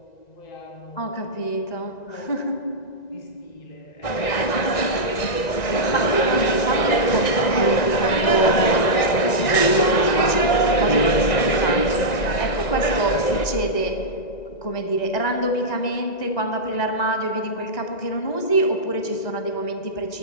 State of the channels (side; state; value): right; late; 1.9 ms